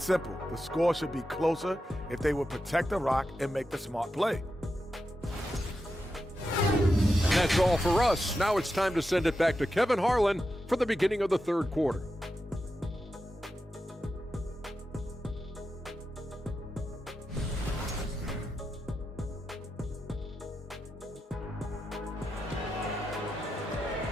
simple. The score should be closer if they would protect the rock and make the smart play. And that's all for us. Now it's time to send it back to Kevin Harlan for the beginning of the third quarter.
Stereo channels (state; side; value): normal; both; correlation 0.89